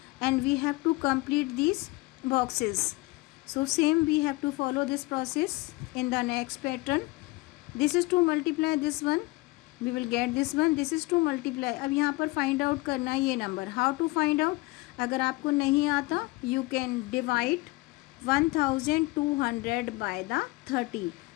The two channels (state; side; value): quieter; right; 22.3 dB